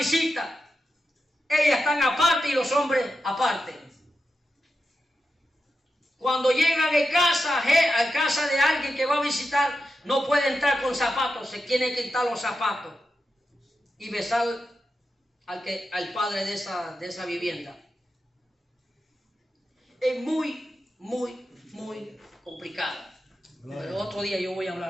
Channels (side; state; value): both; normal; correlation 0.89